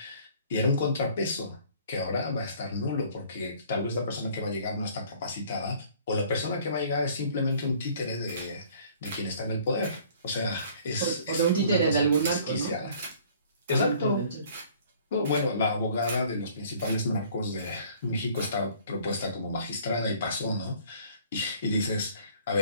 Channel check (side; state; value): both; inverted; correlation -0.55